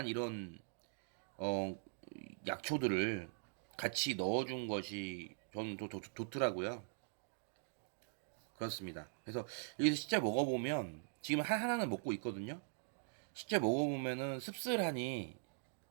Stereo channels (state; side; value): silent; left; digital silence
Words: 이런 어 약초들을 같이 넣어준 것이 저는 좋더라고요. 그렇습니다. 그래서 여기서 실제 먹어보면 지금 하나는 먹고 있거든요. 실제 먹어보면은 씁쓸하니